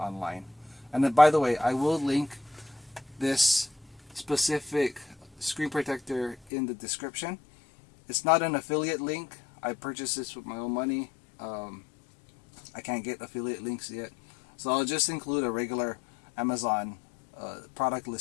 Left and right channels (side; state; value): right; drops out; at 6.4 s